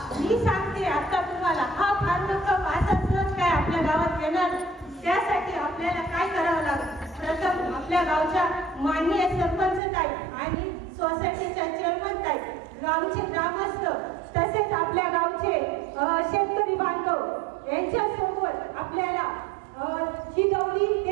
मी सांगते आता तुम्हाला. हा फॉर्म्युला माझा सहज काय आपल्या गावात येणार, त्यासाठी आपल्याला काय करावं लागेल. प्रथम आपल्या गावच्या माननीय सरपंच ताई आणि सोसायटीच्या चेअरमन ताई, गावचे ग्रामस्थ, तसेच आपल्या गावचे शेतकरी बांधव यांच्यासोबत आपल्याला ही गौरी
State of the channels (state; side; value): drops out; left; at 9.8 s